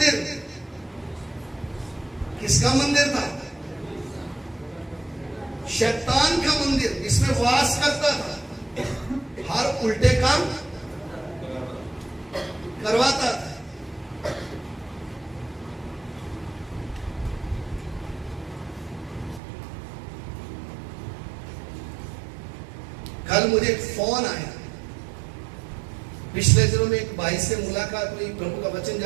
था? शैतान का मंदिर, जिसमें वास करता था, हर उल्टे काम करवाता था। कल मुझे एक फोन आया, पिछले दिनों में एक भाई से मुलाकात हुई, प्रभु का वचन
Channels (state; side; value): drops out; left; at 19.4 s